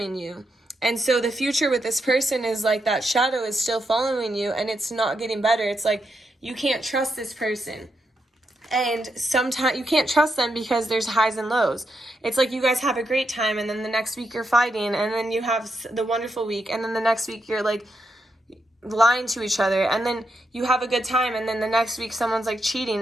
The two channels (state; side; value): normal; both; correlation 0.83